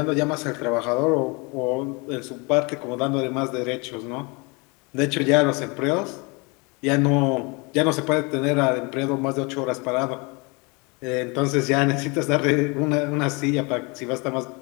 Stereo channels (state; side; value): quieter; right; 29.3 dB